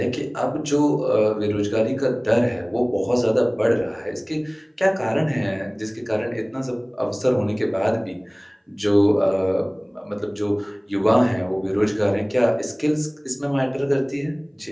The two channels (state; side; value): identical; both; correlation 1.00